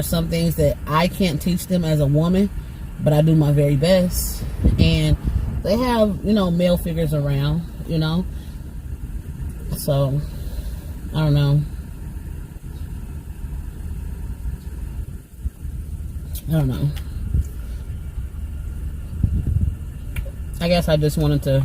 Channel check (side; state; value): both; identical; correlation 1.00